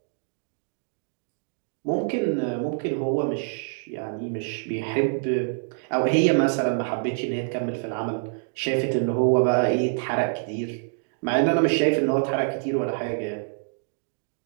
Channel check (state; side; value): silent; left; digital silence